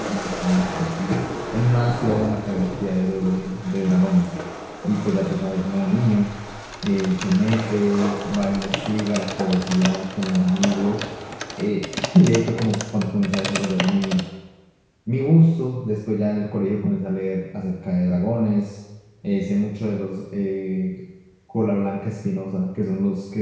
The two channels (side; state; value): both; identical; correlation 1.00